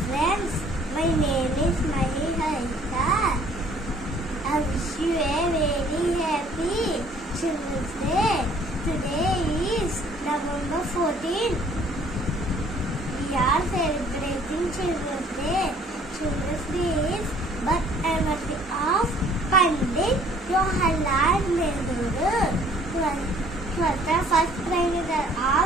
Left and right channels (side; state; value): both; normal; correlation 0.57